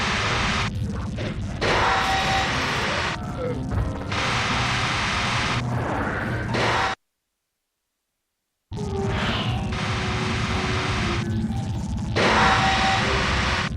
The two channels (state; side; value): identical; both; correlation 1.00